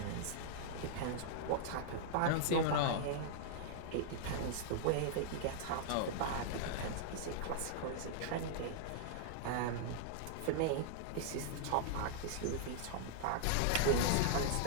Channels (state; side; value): different; both; correlation -0.01